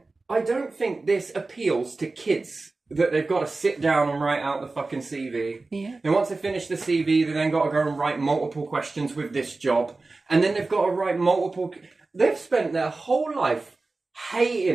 I don't think this appeals to kids, that they've got to sit down and write out the fucking CV. And once they finish the CV, they then got to go and write multiple questions with this job. And then they've got to write multiple... They've spent their whole life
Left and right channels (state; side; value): quieter; left; 3.5 dB